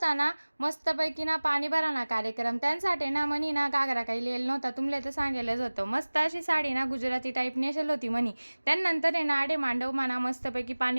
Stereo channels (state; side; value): inverted; both; correlation -1.00